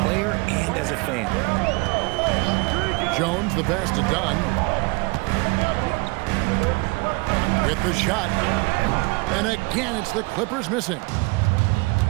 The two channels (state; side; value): quieter; left; 27.9 dB